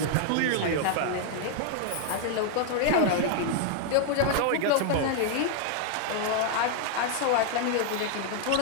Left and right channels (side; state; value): both; different; correlation 0.00